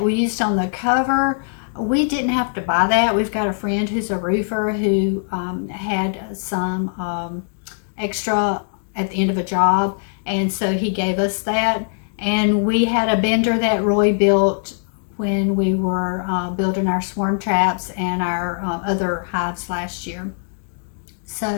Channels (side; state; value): right; silent; digital silence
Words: we used on the cover, we didn't have to buy that. We've got a friend who's a roofer who had some extra at the end of a job, and so he gave us that. And we had a bender that Roy built when we were building our swarm traps and our other hives last year.